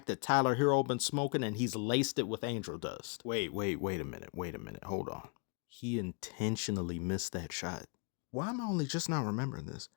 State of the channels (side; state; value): right; quieter; 36.3 dB